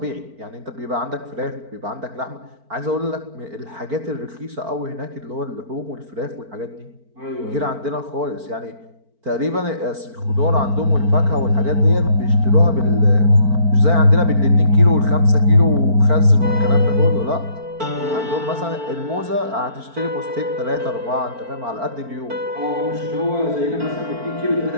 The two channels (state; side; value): late; left; 4.5 ms